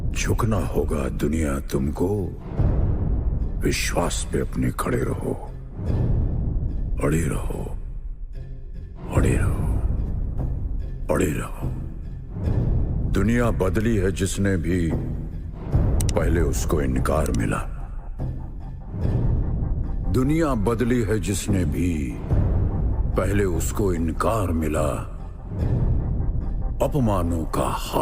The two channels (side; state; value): both; identical; correlation 1.00